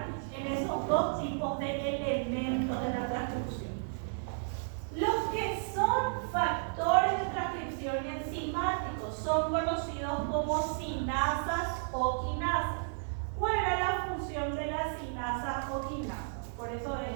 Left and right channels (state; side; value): silent; left; digital silence